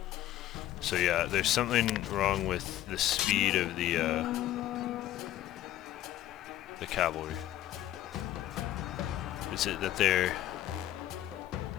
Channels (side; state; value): right; quieter; 13.4 dB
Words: So yeah, there's something wrong with the speed of the cavalry. Is it that they're